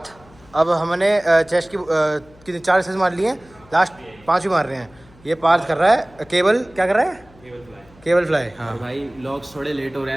अब हमने चेस्ट की 4 एक्सरसाइज मार लिए हैं, लास्ट 5 भी मार रहे हैं। ये पार्थ कर रहा है केबल, क्या कर रहा है? Cable fly. हाँ भाई व्लॉग्स थोड़े लेट हो रहे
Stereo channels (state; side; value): noise; left; hum, 26 dB below the sound